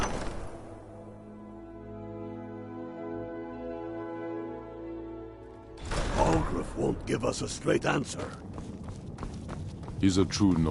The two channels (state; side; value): identical; both; correlation 1.00